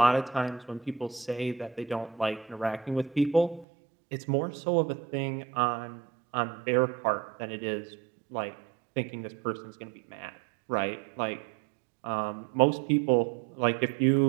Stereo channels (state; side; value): drops out; left; at 3.7 s